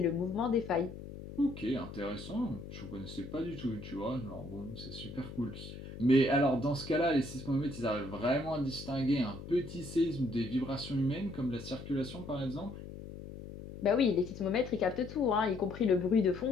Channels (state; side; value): noise; left; hum, 12 dB below the sound